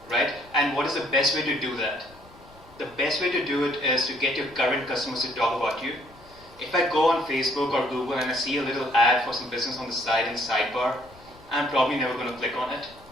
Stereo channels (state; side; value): noise; left; rumble, 25 dB below the sound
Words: right? And what is the best way to do that? The best way to do it is to get your current customers to talk about you. If I go on Facebook or Google and I see a little ad for some business on the side in the sidebar, I'm probably never going to click on it.